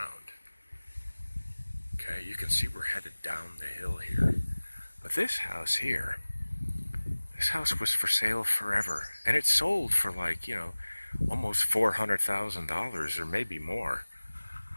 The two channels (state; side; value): inverted; both; correlation -1.00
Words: Okay, you can see we're headed down the hill here. But this house here, this house was for sale forever. And it sold for almost $400,000 or maybe more.